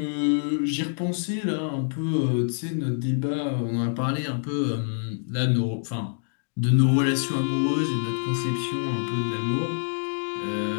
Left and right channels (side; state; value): right; silent; digital silence